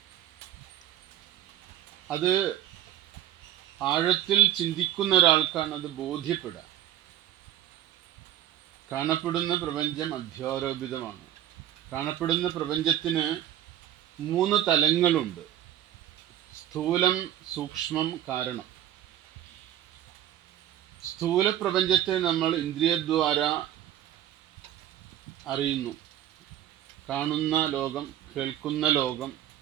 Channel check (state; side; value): quieter; left; 11.8 dB